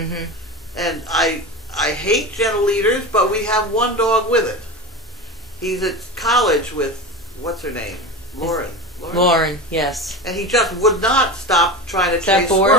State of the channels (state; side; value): normal; both; correlation 0.27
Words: And I hate gentle leaders, but we have one dog with it. He's at college with, what's her name? Lauren, yes. And he just would not stop trying to Is that chase